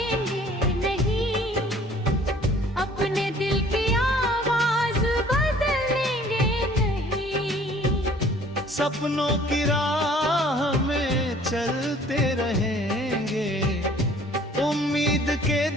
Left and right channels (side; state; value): both; normal; correlation 0.54